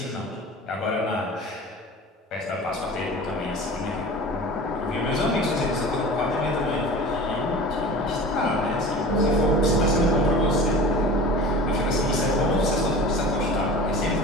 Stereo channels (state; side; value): normal; both; correlation 0.37